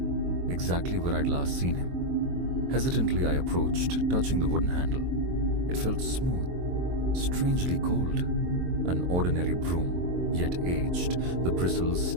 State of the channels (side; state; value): left; late; 23 ms